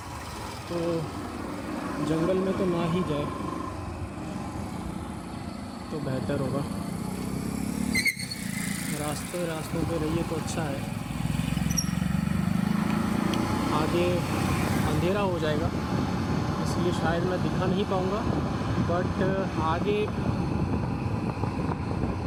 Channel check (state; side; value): identical; both; correlation 1.00